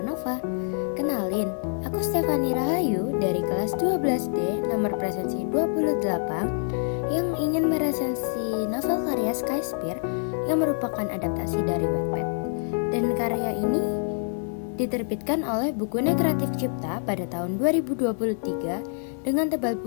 Nova. Kenalin, aku Stefani Rahayu dari kelas 12D nomor presensi 28 yang ingin meresensi novel karya Skyspear yang merupakan adaptasi dari Wattpad. Dan karya ini diterbitkan oleh Bukunya Kreatif Cipta pada tahun 2023 dengan tebal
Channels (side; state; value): right; silent; digital silence